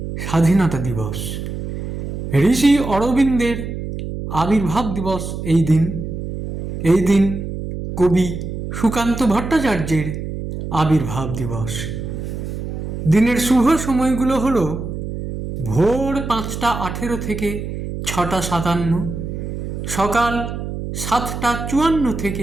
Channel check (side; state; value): right; noise; hum, 6 dB below the sound